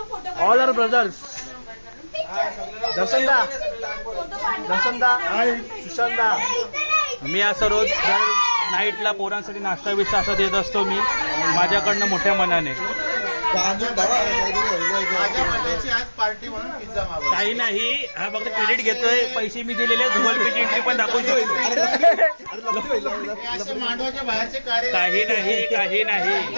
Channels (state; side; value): inverted; both; correlation -1.00